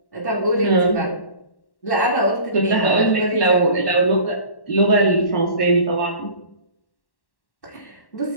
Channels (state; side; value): late; right; 1.1 ms